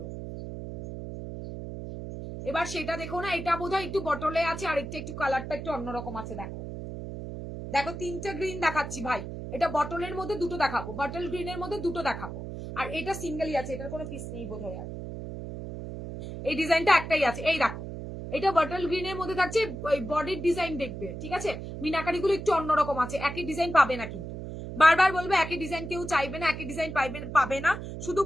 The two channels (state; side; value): noise; right; hum, 8 dB below the sound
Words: এবার সেটা দেখো না। এটা বোধহয় একটু বটলে আছে, আর একটু কালারটা একটু অন্যরকম আছে। দেখো দেখো, তিনটে গ্রিন দেখাচ্ছি ভাই। এটা বটলের মধ্যে দুটো দেখাবো, বটল গ্রিনের মধ্যে দুটো দেখাবো, আর এটা সিঙ্গেলই আছে, এটার কোনো পিস নেই বোধহয়। আর এই ডিজাইনটা একটাই আছে, এই দেখো, এটা বটল গ্রিনের মধ্যে থাকছে, ওই বডির ডিজাইন দেখবে, ঠিক আছে? মিনাকারি গুলো একটু অন্যরকম আছে, একই ডিজাইন পাবে না কিন্তু। বারবার বলবো, একই ডিজাইন কেউ চাইবে না, একই ডিজাইন পাবে না। শুধু